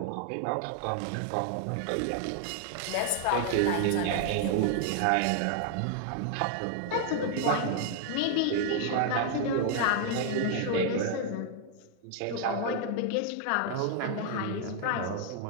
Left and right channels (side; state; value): both; different; correlation 0.00